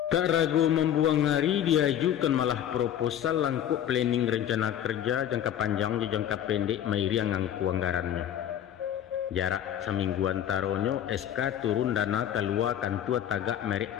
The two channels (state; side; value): quieter; right; 10.4 dB